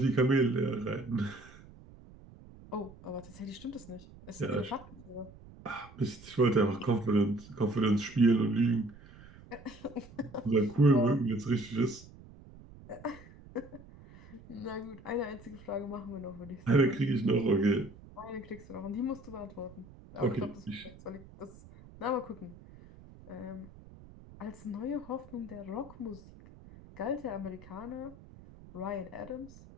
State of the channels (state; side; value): noise; right; rumble, 20 dB below the sound